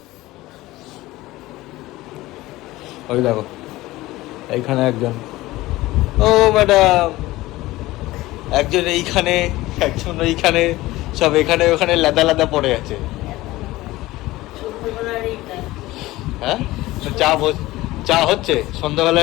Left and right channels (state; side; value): quieter; right; 18.1 dB